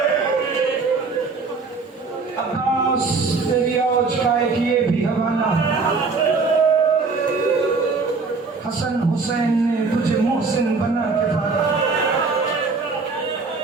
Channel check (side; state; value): left; quieter; 4.4 dB